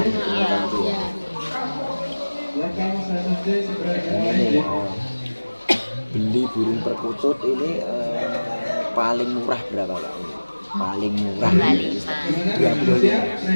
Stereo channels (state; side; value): inverted; both; correlation -1.00